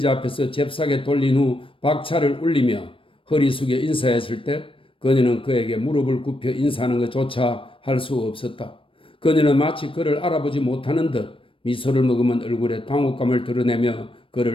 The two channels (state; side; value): late; right; 0.25 ms